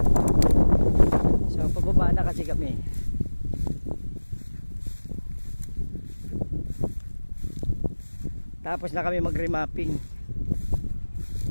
So pababa na kasi kami. Tapos na kami mag-remapping.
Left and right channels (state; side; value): inverted; both; correlation -1.00